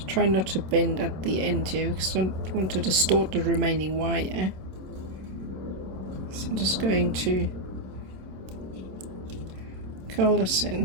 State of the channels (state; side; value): late; left; 27 ms